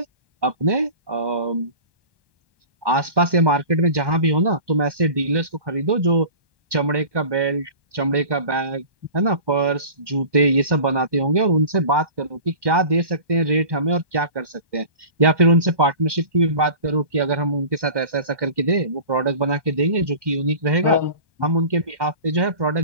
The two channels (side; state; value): left; late; 1.2 ms